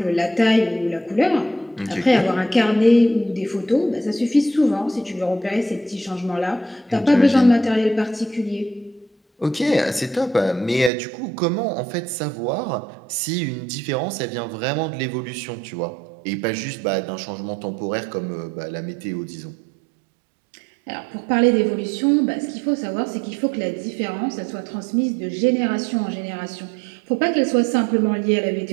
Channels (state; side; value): drops out; left; at 10.9 s